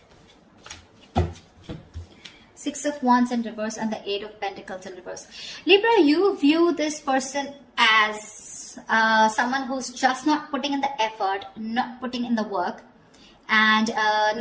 6 of Wands in reverse and the 8 of Pentacles in reverse. Libra, you view this person as someone who's just not putting in the effort, not putting in the work, and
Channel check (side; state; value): both; identical; correlation 1.00